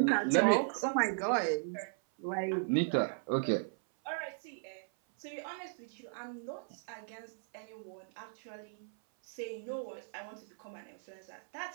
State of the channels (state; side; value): silent; left; 53 dB below the other